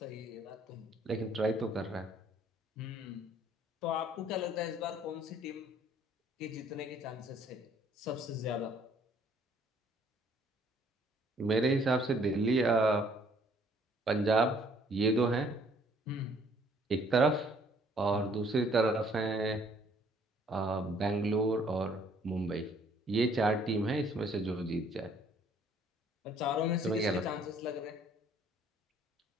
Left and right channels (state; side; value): normal; both; correlation 0.61